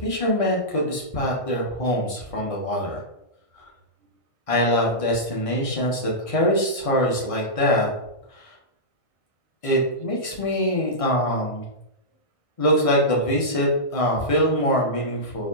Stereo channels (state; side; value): late; right; 1.6 ms